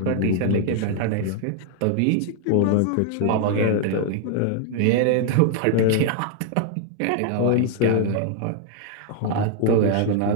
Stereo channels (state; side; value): different; both; correlation 0.00